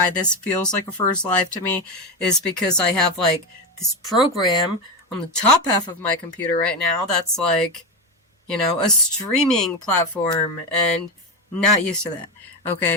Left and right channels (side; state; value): both; normal; correlation 0.14